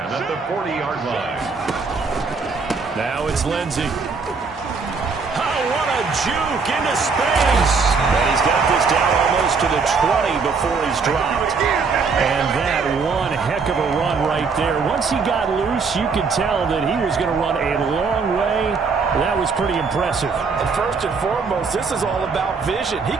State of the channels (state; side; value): quieter; left; 4.9 dB